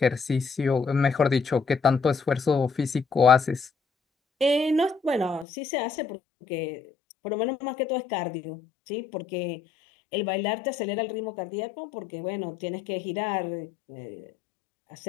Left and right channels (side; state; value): right; drops out; at 5.5 s